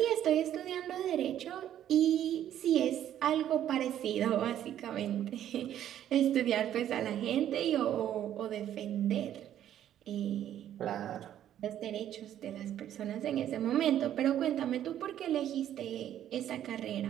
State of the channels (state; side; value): quieter; left; 11.1 dB